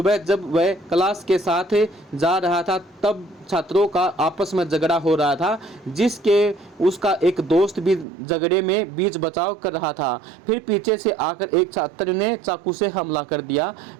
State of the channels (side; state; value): left; drops out; at 8.1 s